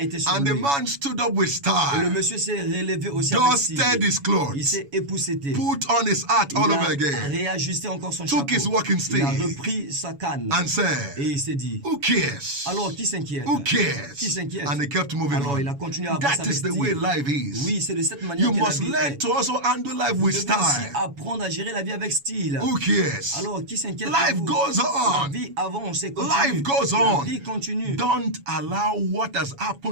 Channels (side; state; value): left; late; 7.1 ms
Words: étaient sur And the lui. man stood up with Et le style, monsieur s'est relevé aussi avec style. dusted his Il clothes, s'est épousseté. put on his hat all Il over a again, réajusté encore son took his chapeau. walking Il a stick repris sa canne. and said, Et il s'est dit, who cares? alors qui s'inquiète? Who cares? Qui s'inquiète? And he kept moving Alors on. il a continué à avancer That avec is the way style. life is. Oui, c'est de cette manière You que la must vie learn est. to also handle life Vous with devez aussi style. apprendre à gérer la vie avec style. Who cares? Alors, qui s'inquiète? Life pour vous? goes La on. vie avance et continue. Life goes La on. vie continue. Don't allow what has